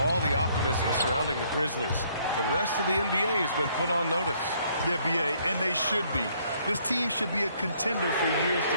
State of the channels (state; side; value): inverted; both; correlation -0.66